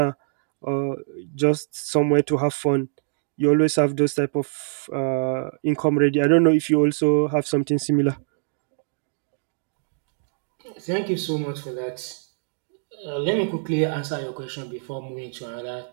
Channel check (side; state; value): left; silent; digital silence